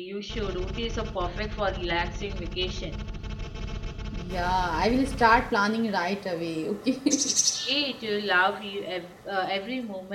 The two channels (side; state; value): both; identical; correlation 1.00